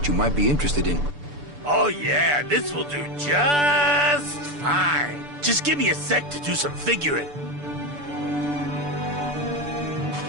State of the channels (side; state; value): left; late; 6.9 ms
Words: you might be interested in. Oh yeah, this will do just fine. Just give me a sec to do some figuring.